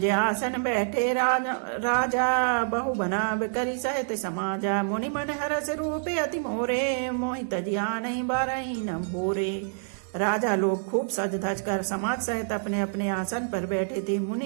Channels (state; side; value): silent; left; digital silence